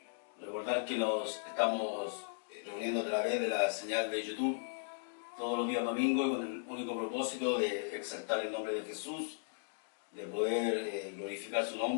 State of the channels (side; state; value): right; silent; digital silence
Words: Recordar que nos estamos reuniendo a través de la señal de YouTube todos los días domingos con el único propósito de exaltar el nombre de Jesús, de poder glorificar su